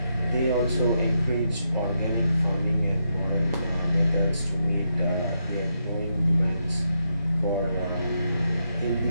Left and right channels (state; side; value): inverted; both; correlation -0.82